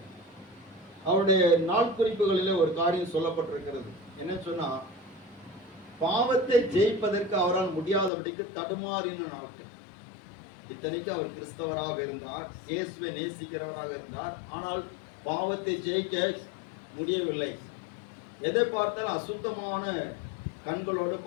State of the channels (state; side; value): drops out; right; at 8.1 s